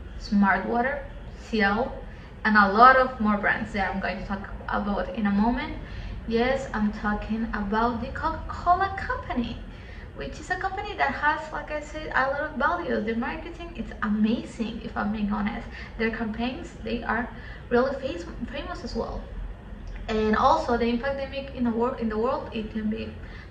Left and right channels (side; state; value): both; identical; correlation 1.00